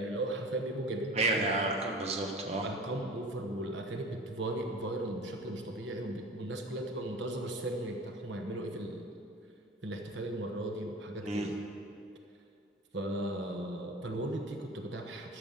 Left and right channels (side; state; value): both; normal; correlation 0.37